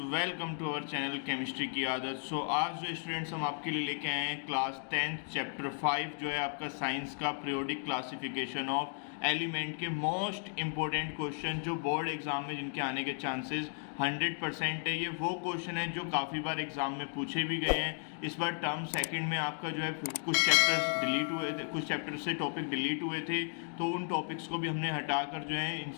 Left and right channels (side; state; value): right; silent; 55 dB below the other